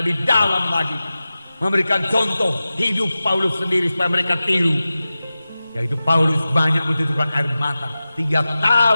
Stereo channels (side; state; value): both; inverted; correlation -0.95